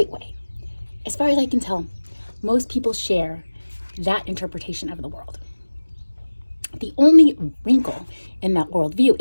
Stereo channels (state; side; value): inverted; both; correlation -1.00